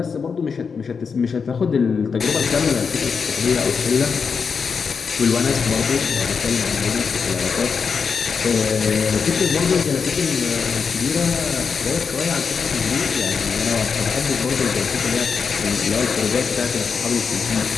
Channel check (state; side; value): quieter; right; 5.7 dB